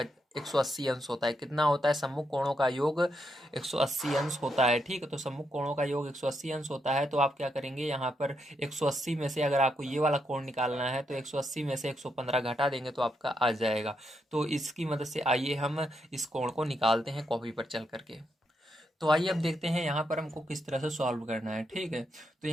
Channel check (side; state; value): both; normal; correlation 0.81